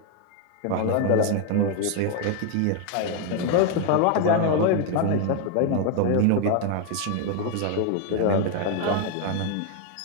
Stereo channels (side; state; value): both; different; correlation 0.01